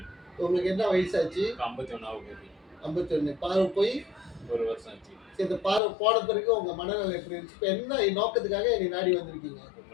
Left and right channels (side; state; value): right; drops out; at 5.8 s